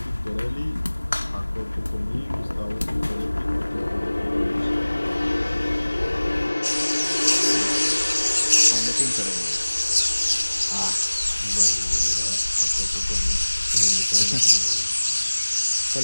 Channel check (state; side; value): inverted; both; correlation -1.00